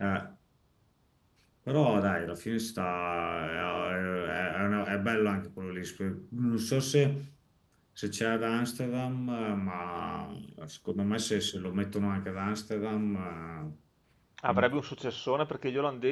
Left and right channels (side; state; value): both; identical; correlation 1.00